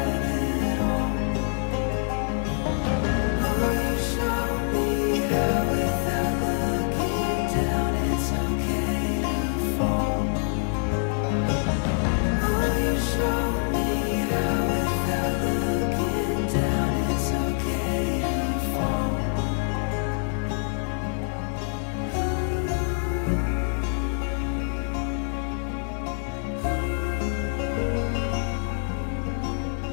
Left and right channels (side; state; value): right; silent; 61 dB below the other